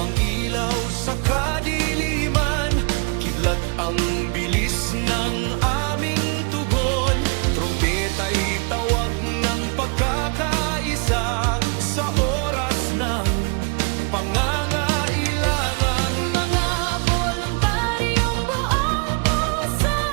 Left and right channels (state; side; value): quieter; left; 35.2 dB